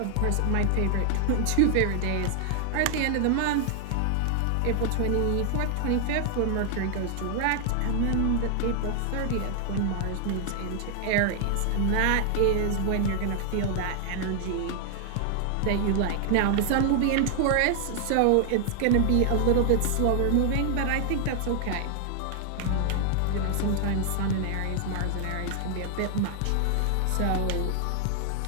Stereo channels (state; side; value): different; both; correlation 0.00